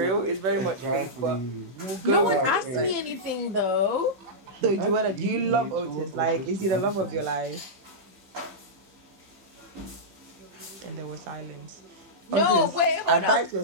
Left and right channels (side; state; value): left; late; 15 ms